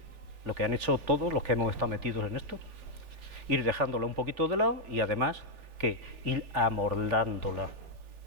lo que han hecho todos los que hemos estado metidos en esto. Ir dejándola un poquito de lado y además, ¿qué? Ir amordándola,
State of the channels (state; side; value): late; left; 3.4 ms